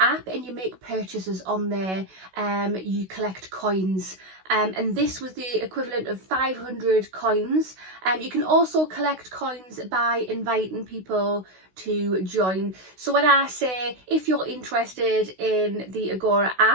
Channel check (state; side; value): late; left; 16 ms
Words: and you make purchases on there, you collect coins. And this was the equivalent of 500 coins. You can also collect coins by inviting people to join. So when I say if you're interested in the Agora